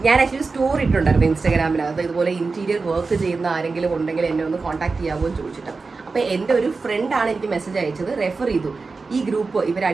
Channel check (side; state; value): left; quieter; 4.2 dB